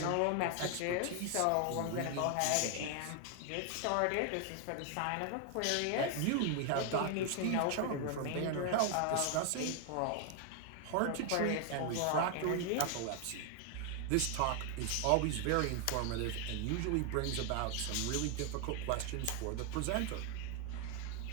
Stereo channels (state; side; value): different; both; correlation 0.01